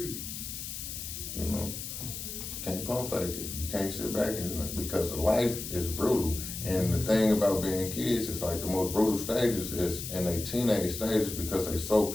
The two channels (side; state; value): left; noise; hiss, 7 dB below the sound